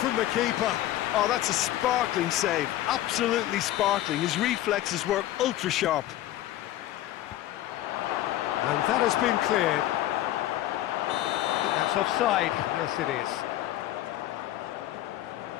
the keeper. Oh, that's a sparkling save, absolutely sparkling. His reflexes were ultra sharp. And that has been cleared. That's offside, yes it is.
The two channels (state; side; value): quieter; right; 14.2 dB